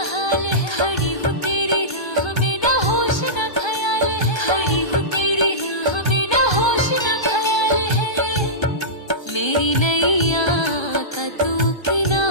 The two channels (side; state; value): right; late; 1.3 ms